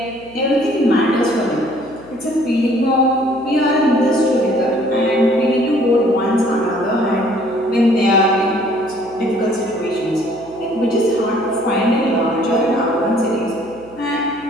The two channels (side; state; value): right; noise; hum, 24 dB below the sound